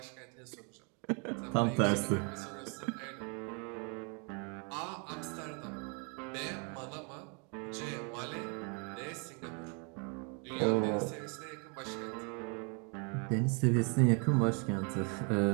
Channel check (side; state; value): left; quieter; 35.9 dB